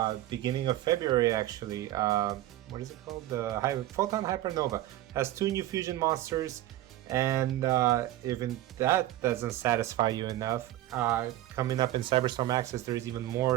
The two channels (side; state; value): left; quieter; 14.5 dB